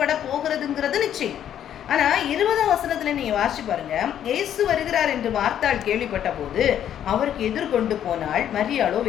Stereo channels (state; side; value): quieter; right; 10.2 dB